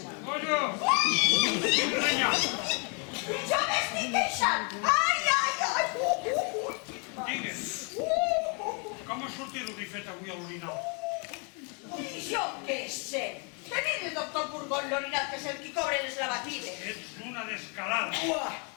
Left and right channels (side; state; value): right; quieter; 36.1 dB